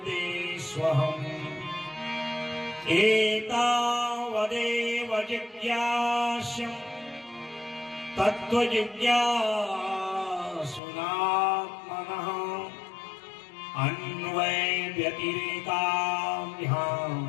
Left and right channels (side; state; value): right; drops out; at 10.8 s